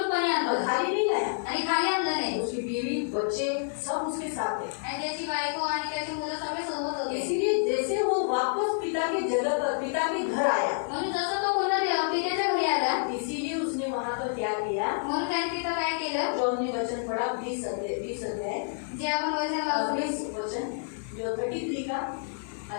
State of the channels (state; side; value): silent; right; 59 dB below the other